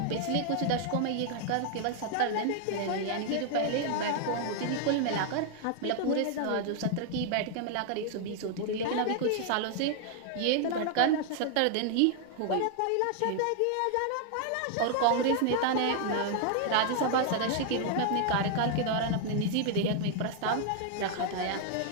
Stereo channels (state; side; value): different; both; correlation 0.00